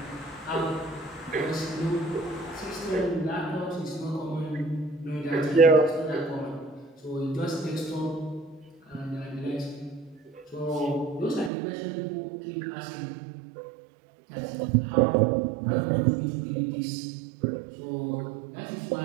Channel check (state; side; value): drops out; left; at 11.5 s